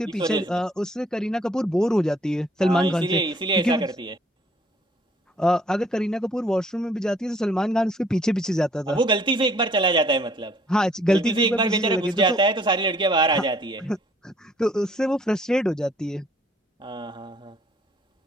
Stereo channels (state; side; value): normal; both; correlation 0.61